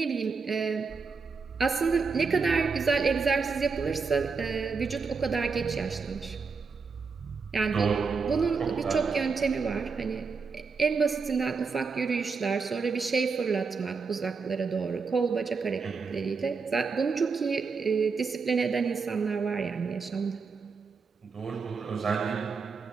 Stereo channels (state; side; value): quieter; left; 5.0 dB